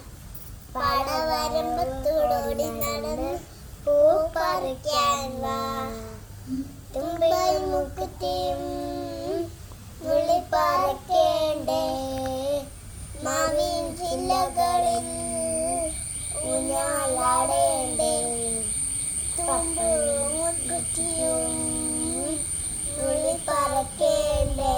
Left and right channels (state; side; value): identical; both; correlation 1.00